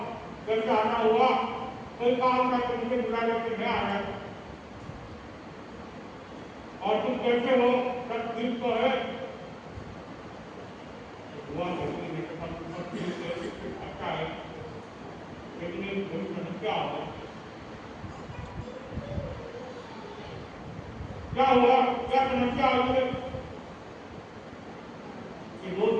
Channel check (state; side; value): identical; both; correlation 1.00